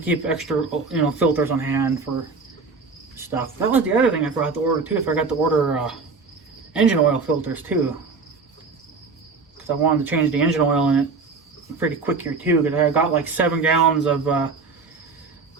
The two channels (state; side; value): quieter; left; 4.5 dB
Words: extra filters on hand for stuff. That was the other thing I forgot to order too. I forgot to order engine oil filters too, because I wanted to change the engine oil in it pretty quick here too. Because I got like 7 gallons of